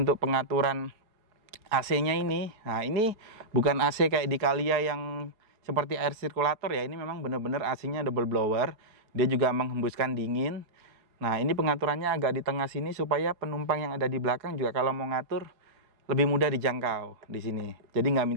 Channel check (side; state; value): left; late; 4.7 ms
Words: pengaturan AC-nya ini, nah ini bukan AC kayak di Calya yang seperti air sirkulator ya. Ini memang benar-benar AC-nya double blower. Dia juga menghembuskan dingin. Nah, ini pengaturannya agak di tengah sini supaya penumpang yang ada di belakang juga kalau mau ngatur lebih mudah dijangkau di sini. Jadi nggak